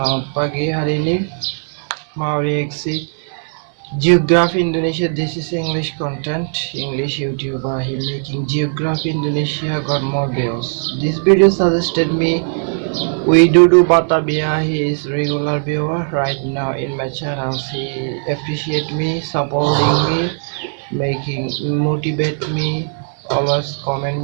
pagi. Hari ini mau reaksi Geography Indonesia. This is English content, English YouTuber. He making Geography Indonesia, got more views. This video suggested me Widudu Batavia. He is regular viewer right now in my channel. He appreciate me, supporting me, making motivate me, always comment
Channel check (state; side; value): silent; left; digital silence